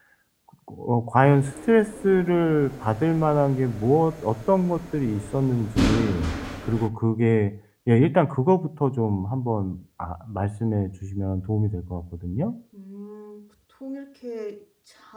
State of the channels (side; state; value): both; identical; correlation 1.00